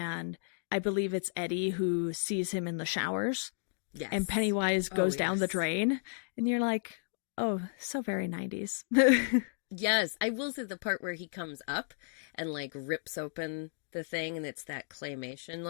I believe it's Eddie who sees him in the showers, and Yes. Pennywise Oh, goes down the yes. drain, and you're like, oh, so very 90s. Yes, I will say the part where he comes up and like rips open the thing and it's that claymation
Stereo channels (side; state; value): right; silent; digital silence